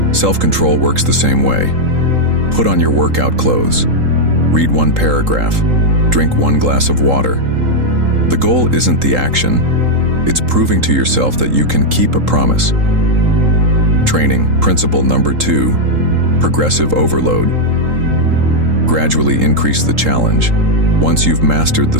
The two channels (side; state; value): left; late; 3.8 ms